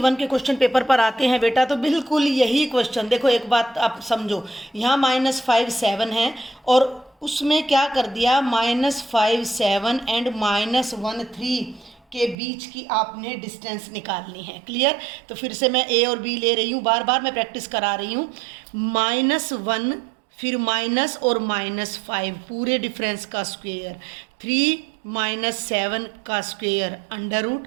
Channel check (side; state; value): left; drops out; at 12.4 s